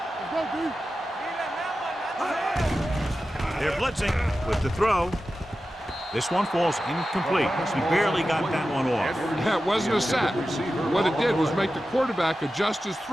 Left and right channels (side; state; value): both; normal; correlation 0.93